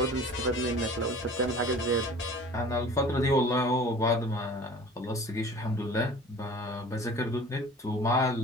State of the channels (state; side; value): normal; both; correlation 0.44